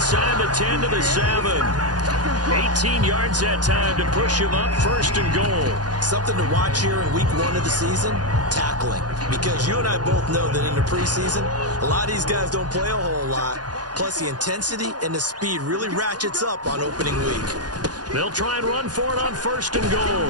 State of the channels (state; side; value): late; left; 0.69 ms